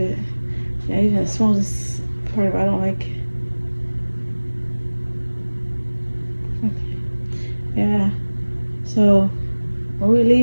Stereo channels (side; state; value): both; inverted; correlation -1.00